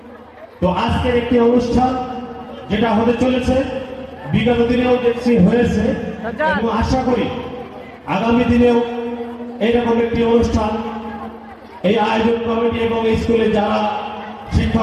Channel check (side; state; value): both; identical; correlation 1.00